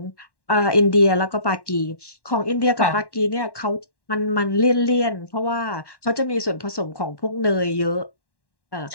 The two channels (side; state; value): right; late; 1.1 ms